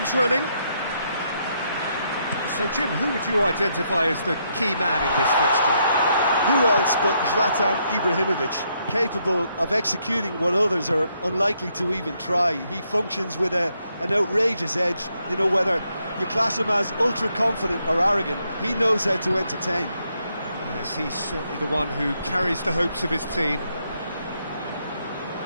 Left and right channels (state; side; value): inverted; both; correlation -0.76